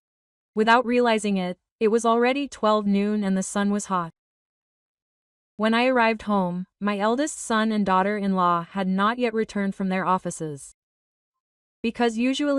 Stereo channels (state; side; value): identical; both; correlation 1.00